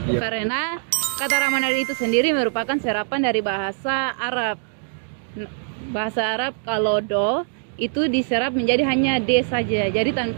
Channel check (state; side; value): silent; left; digital silence